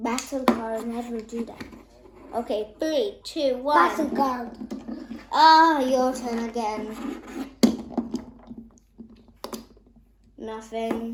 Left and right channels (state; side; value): identical; both; correlation 1.00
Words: card never do that. Okay, 3, 2, 1. Bakugan. Your turn again.